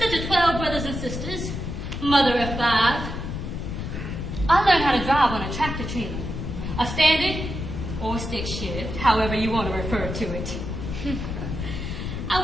to 12 brothers and sisters, mother of 5. I learned how to drive on a tractor trailer, a standard or stick shift, however you want to refer to it. I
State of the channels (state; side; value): noise; left; rumble, 5 dB below the sound